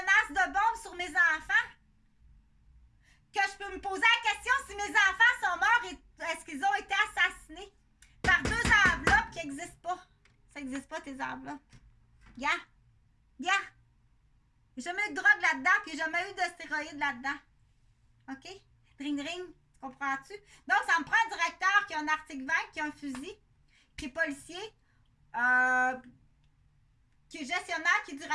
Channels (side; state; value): both; identical; correlation 1.00